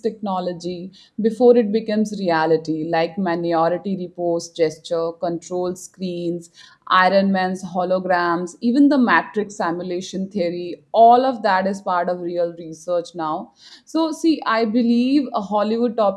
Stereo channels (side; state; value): both; identical; correlation 1.00